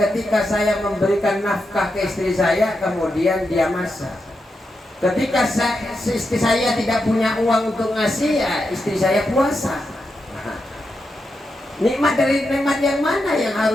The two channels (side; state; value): both; normal; correlation 0.86